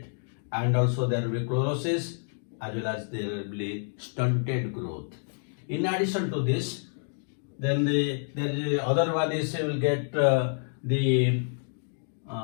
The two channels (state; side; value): silent; right; digital silence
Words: and also there will be chlorosis, as well as there will be stunted growth. In addition to this, then the other one is you will get the